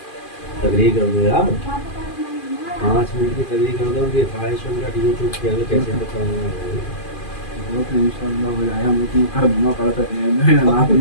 تقریر کر دو یار 5 منٹ کی تقریر کر دو کہ 500 منٹ یوٹیوب پہ کیسے بتاؤں ان شاء اللہ ہو جائے ہم اتنا کر دوں پڑتا ہے رات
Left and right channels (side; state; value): right; late; 2.4 ms